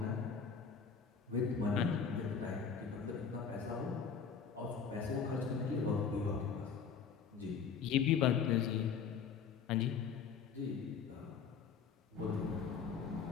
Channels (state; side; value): quieter; right; 6.3 dB